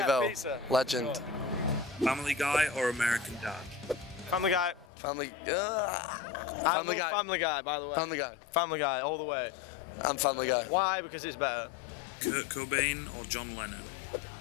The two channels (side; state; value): right; drops out; at 4.9 s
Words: Evo. pizza. Legend. Family Guy or American Dad? Family Guy. Family. Family Guy. Family Guy, by the way. Family Guy. Family Guy, all the way. I'm Family Guy. Why? Because it's better. Kurt Cobain or John Lennon?